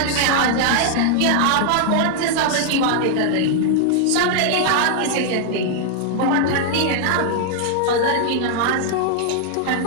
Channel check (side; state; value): both; different; correlation 0.00